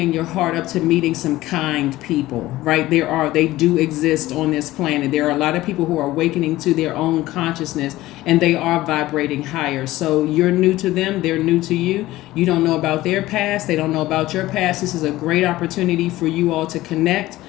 your heart up to meeting some kind people, right? They do exist on this planet. There are a lot of people who are awakening to their own consciousness and they are vibrating higher. So you're new to them. They're new to you. You don't know about their past. They don't know about your past. This is a great opportunity for you all to connect.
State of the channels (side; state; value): right; quieter; 16.9 dB